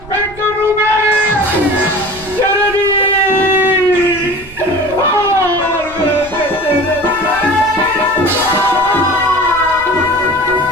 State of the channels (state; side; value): noise; right; rumble, 18 dB below the sound